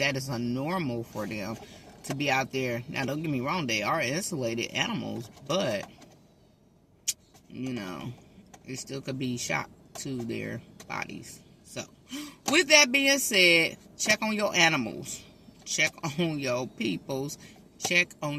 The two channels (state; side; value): identical; both; correlation 1.00